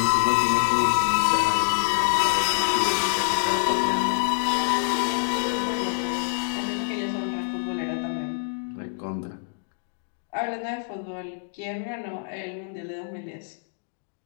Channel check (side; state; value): right; silent; digital silence